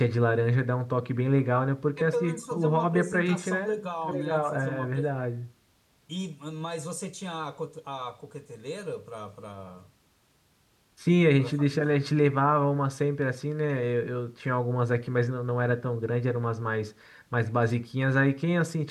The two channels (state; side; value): identical; both; correlation 1.00